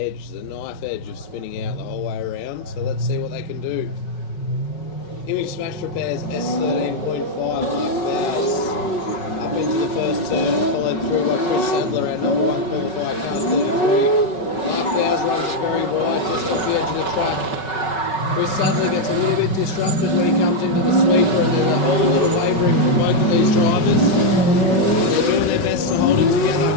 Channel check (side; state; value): right; late; 5.3 ms